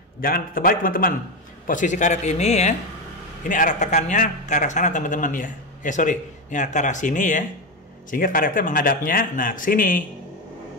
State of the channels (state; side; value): normal; both; correlation 0.13